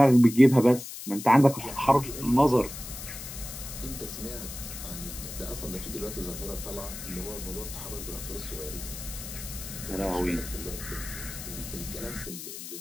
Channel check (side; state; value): left; noise; hiss, 10 dB below the sound